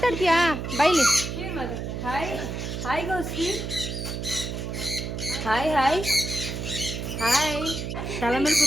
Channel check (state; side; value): noise; right; hum, 5 dB below the sound